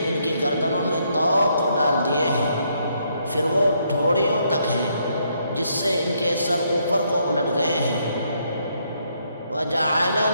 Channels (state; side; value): inverted; both; correlation -0.73